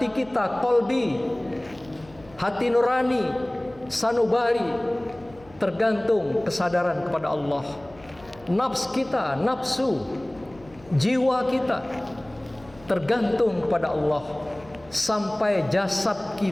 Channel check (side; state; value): left; noise; hum, 24 dB below the sound